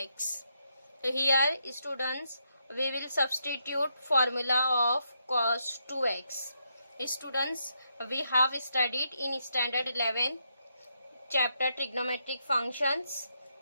So here students, we will substitute formula of cos 2x. Students, we have studied in standard 11 chapter trigonometric functions.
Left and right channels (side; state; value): both; inverted; correlation -0.79